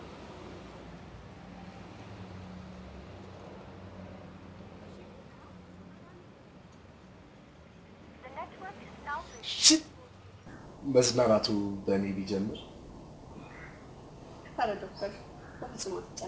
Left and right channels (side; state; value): both; identical; correlation 1.00